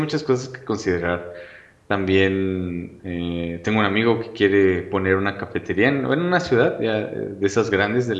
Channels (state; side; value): identical; both; correlation 1.00